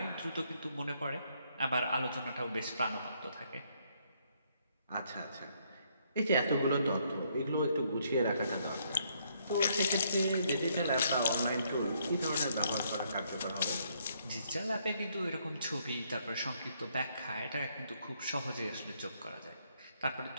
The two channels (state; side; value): inverted; both; correlation -0.71